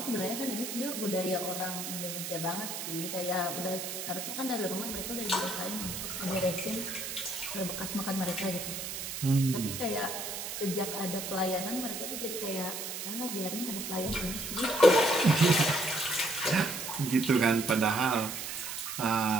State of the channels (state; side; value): noise; right; hiss, 6 dB below the sound